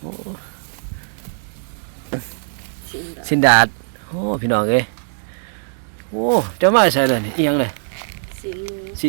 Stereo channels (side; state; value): left; silent; 57 dB below the other